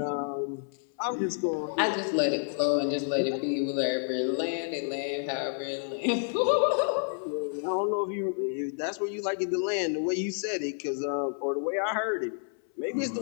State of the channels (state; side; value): silent; right; 58 dB below the other